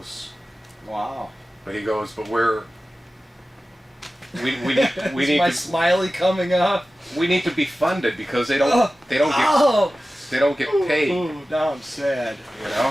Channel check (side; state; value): both; normal; correlation 0.95